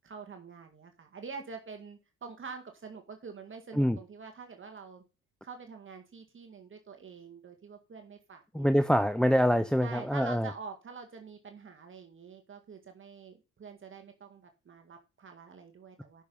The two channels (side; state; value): both; normal; correlation 0.92